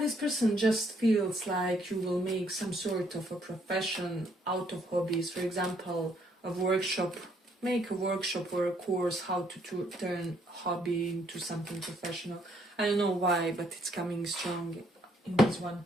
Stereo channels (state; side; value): normal; both; correlation 0.68